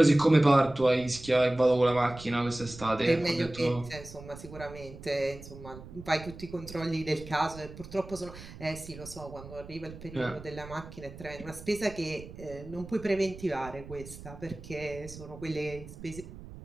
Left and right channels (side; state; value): right; noise; rumble, 15 dB below the sound